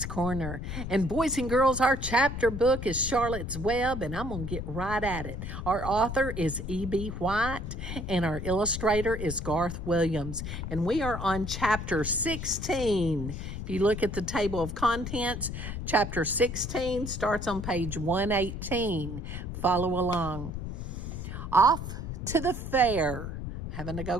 Corner. And boys and girls, our chapter book is Charlotte's Web, and I'm going to get right at it. Our author is E.B. White, and our illustrator is Garth Williams. And we are on chapter 16. If you look at the table of contents, chapter 16 starts on page 118. Follow along. Off to the fair. Having to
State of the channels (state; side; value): noise; left; rumble, 6 dB below the sound